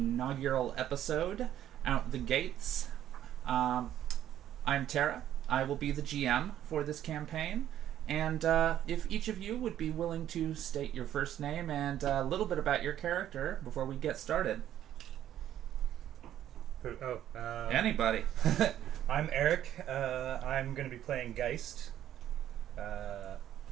episode, Out the Gates. I'm Terra. I will be the GM for this campaign. And if each of you would be willing to state your first name and a little bit about your character before we get started. Anybody. I'm Erik. I'm going to be playing Geist.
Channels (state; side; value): quieter; left; 11.5 dB